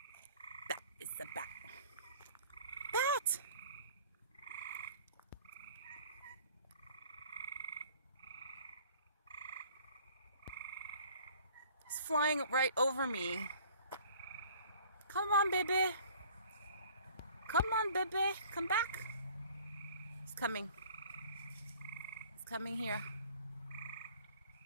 That is a bat. Bat! He's flying right over me. Come on, baby. Come on, baby. Come back. He's coming. He's coming here.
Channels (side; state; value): both; inverted; correlation -0.52